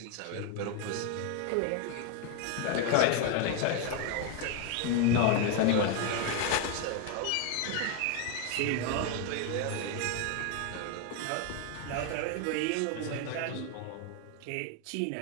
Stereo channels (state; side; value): different; both; correlation 0.01